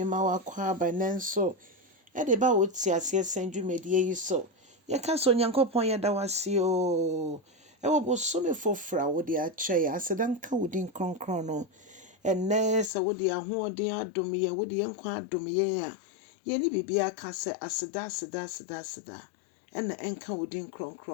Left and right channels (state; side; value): drops out; right; at 12.9 s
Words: ma wakwa by nenso. De ba woti ase senju medie yi so. Ye ka so Onyankopɔn ye da wase o. Wo bosome fofra wo de akyɛ ya asedan ka wodin kronkron no. Enne sa wo de ahoɔden adom ye wo de nkwa adom ye a. Ye ni bibia ka se aseda. Ena enka wodin